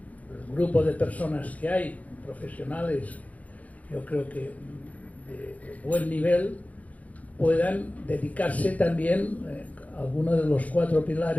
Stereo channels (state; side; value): late; right; 0.071 ms